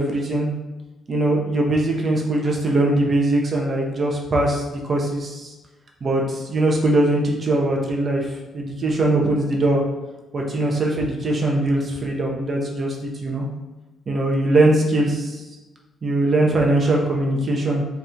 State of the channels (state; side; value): normal; both; correlation 0.75